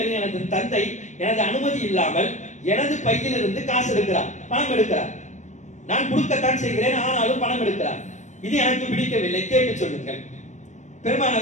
எனது தந்தை எனது அனுமதி இல்லாமல் எனது பையிலிருந்து காசு எடுக்கிறார், பணம் எடுக்கிறார். நான் கொடுக்கத்தான் செய்கிறேன், ஆனாலும் பணம் எடுக்கிறார். இது எனக்கு பிடிக்கவில்லை, கேட்டு சொல்லுங்கள்.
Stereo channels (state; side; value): late; right; 0.35 ms